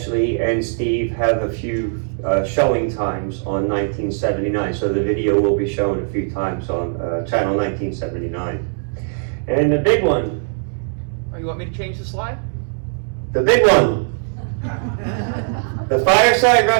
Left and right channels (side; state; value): left; silent; digital silence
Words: and Steve have a few showing times on 1979, so the video will be shown a few times on Channel 1979. And the big one. Oh, you want me to change the slide? The big one. The Fireside